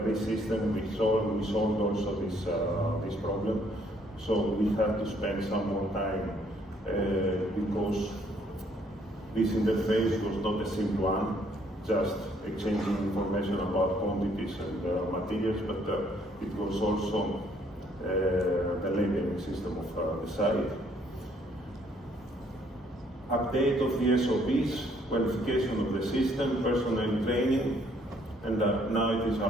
this system we solved also this problem. So we had to spend some more time because this interface was not a simple one, just exchanging information about quantities and materials, but it was also the labeling system of the site. Update of the SOPs, qualification of the system, personnel training, and now it is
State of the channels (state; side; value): normal; both; correlation 0.66